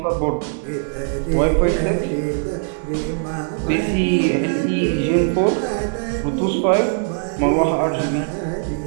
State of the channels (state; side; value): silent; left; 65 dB below the other